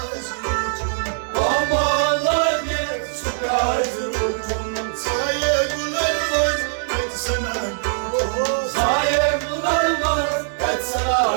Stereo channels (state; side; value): silent; left; 60 dB below the other